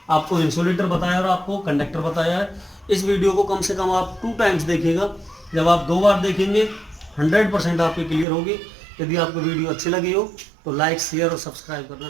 आपको इंसुलेटर बताया और आपको कंडक्टर बताया है। इस वीडियो को कम से कम आप 2 टाइम्स देखिएगा, जब आप 2 बार देखेंगे 100% आपकी क्लियर होगी। यदि आपको वीडियो अच्छी लगी हो तो लाइक शेयर और सब्सक्राइब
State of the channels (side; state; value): left; drops out; at 8.2 s